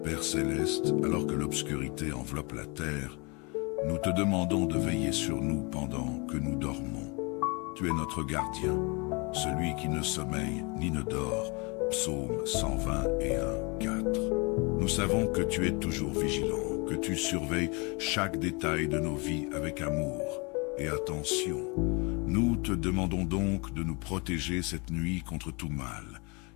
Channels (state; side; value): quieter; right; 29.7 dB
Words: Père céleste, alors que l'obscurité enveloppe la terre, nous te demandons de veiller sur nous pendant que nous dormons. Tu es notre gardien, celui qui ne sommeille ni ne dort. Psaume 121, 4. Nous savons que tu es toujours vigilant, que tu surveilles chaque détail de nos vies avec amour et attention. Nous te demandons donc de nous protéger cette nuit contre tout mal,